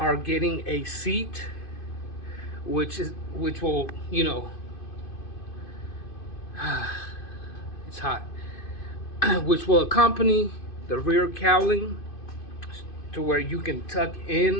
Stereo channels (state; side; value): late; right; 2.5 ms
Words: getting a seat, which will, it's hot, which will accompany the rear cowling to where you can tuck